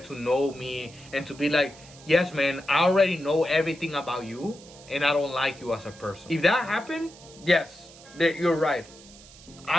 to know me and to be like, yes, man, I already know everything about you and I don't like you as a person. If that happened, yes, you're right.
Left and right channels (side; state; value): right; noise; hiss, 21 dB below the sound